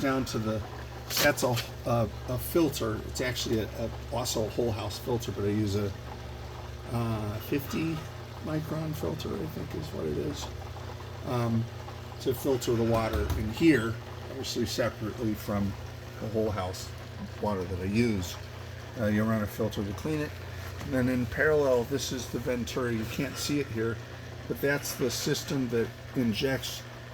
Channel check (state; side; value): identical; both; correlation 1.00